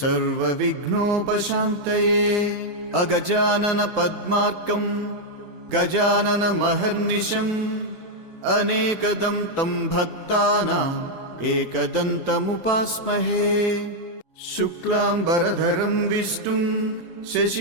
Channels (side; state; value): left; late; 7.0 ms